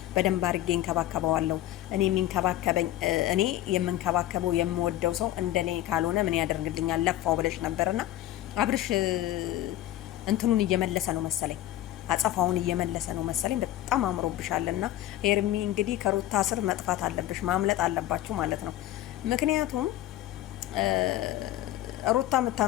በደንብ አድርጌ እንከባከበዋለሁ። እኔ የምንከባከበው የምወደው ሰው እንደኔ ካልሆነ ምን ያደርግልኛል? ለፋው ብለሽ ነበርና አብርሽ እንትኑን እየመለሰ ነው መሰለኝ፣ አጸፋውን እየመለሰ ነው መሰለኝ። በጣም አምሮብሻልና ሄርሚ እንግዲህ ከሩታ ስር መጥፋት አለብሽ፣ ማምለጥ አለባችሁ ማለት ነው። ምክንያቱም ሩታ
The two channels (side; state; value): right; quieter; 14.1 dB